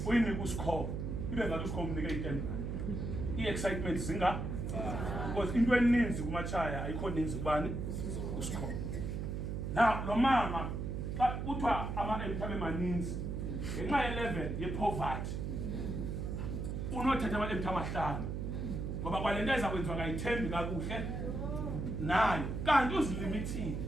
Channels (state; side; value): noise; right; hum, 3 dB below the sound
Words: uyinika usikho ibe ngathi usikho umnika i-10 i-excitement zinga because into eninzi kuMatshaya ayikho ninzi kubani usikho now lo mama xa kuthiwa ama-empty abe maninzi ngenxa ye-level ye-poverty unothatha ama-empty amahlanu ngoba kwale nto ezakwenziwa ngayithembi kakuhle nayo kanti uzilimithile